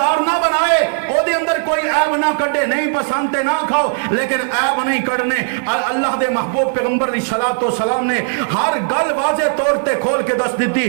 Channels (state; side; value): silent; left; 55 dB below the other